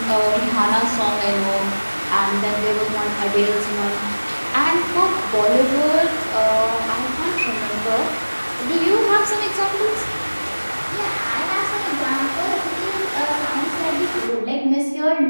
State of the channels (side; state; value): both; inverted; correlation -1.00